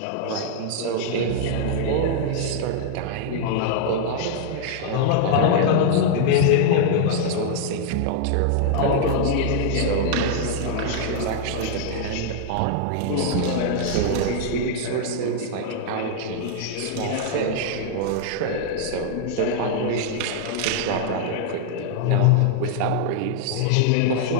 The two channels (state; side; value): different; both; correlation -0.01